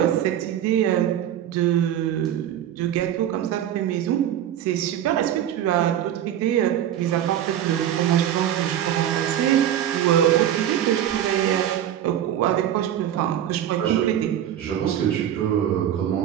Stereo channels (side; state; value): left; quieter; 10.9 dB